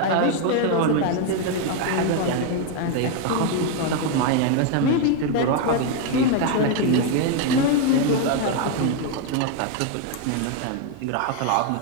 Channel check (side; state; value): both; different; correlation 0.01